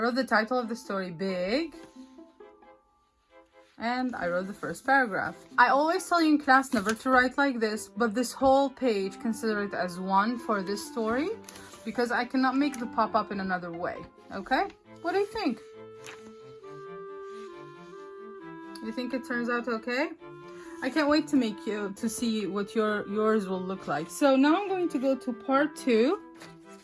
the title of the story big, and I wrote the first paragraph. I always tell you in class never to write like this, but this whole page, consider it as one for this story, because I cannot make the pop-up in another way, okay? What do you think? You think it turns out okay? I can't wait to see what yours will look like. So now I'm going to go to part 2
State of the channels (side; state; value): both; identical; correlation 1.00